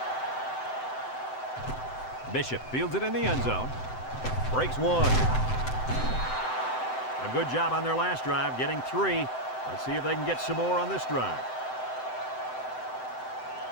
Bishop fields it in the end zone. Breaks 1. A good job on their last drive, getting 3. Let's see if they can get some more on this drive.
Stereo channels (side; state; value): right; late; 7.8 ms